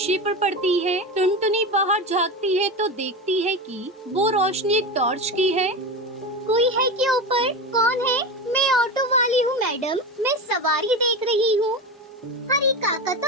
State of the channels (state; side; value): normal; both; correlation 0.22